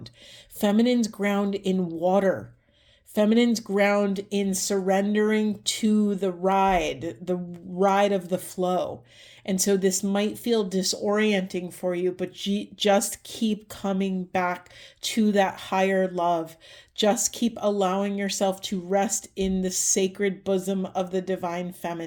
Feminines ground in water. Feminines ground in surrendering to the ride of the flow. And so this might feel disorienting for you, but just keep coming back to that higher love. Just keep allowing yourself to rest in the sacred bosom of the divine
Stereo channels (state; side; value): identical; both; correlation 1.00